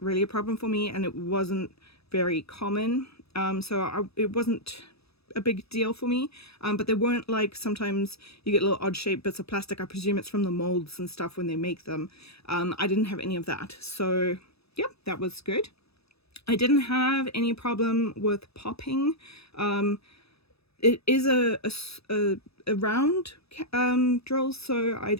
really a problem for me, and it wasn't very common. It wasn't a big deal for me. But they weren't like, sometimes you get little odd shaped bits of plastic. I presume it's from the molds and stuff when they make them. I didn't have any of that. So yeah, that was good. I didn't have any problem with popping. It is a round drill, so I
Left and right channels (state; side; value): late; right; 0.78 ms